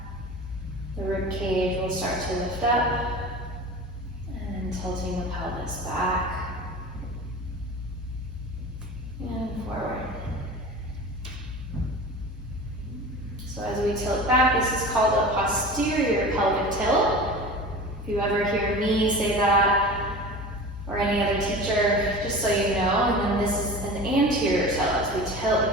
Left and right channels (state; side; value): normal; both; correlation 0.34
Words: the rib cage will start to lift up. And tilting the pelvis back. And forward. So as we tilt back, this is called a posterior pelvic tilt. If you ever hear me say that, or any other teacher, just so you know. And then this is an anterior tilt as we tilt the